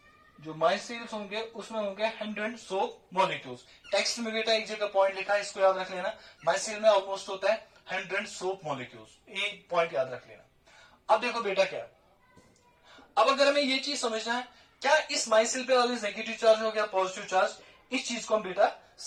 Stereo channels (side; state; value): both; identical; correlation 1.00